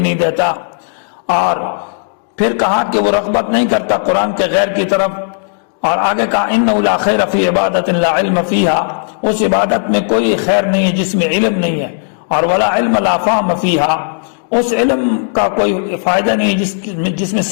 نہیں دیتا. اور پھر کہا کہ وہ رغبت نہیں کرتا قرآن کے غیر کی طرف. اور آگے کہا انہ لا خیر فی عبادت لا علم فیہا، اس عبادت میں کوئی خیر نہیں ہے جس میں علم نہیں ہے. اور ولا علم لا فہم فیہا، اس علم کا کوئی فائدہ نہیں جس میں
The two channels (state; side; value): silent; right; digital silence